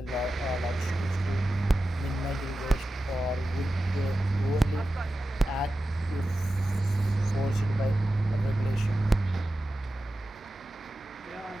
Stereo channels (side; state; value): both; normal; correlation 0.93